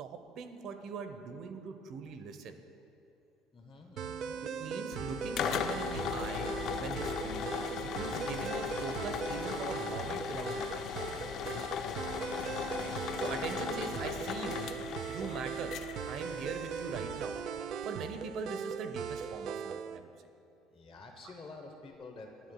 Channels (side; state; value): both; normal; correlation 0.52